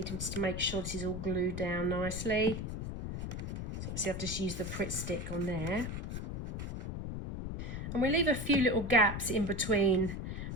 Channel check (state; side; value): noise; left; rumble, 5 dB below the sound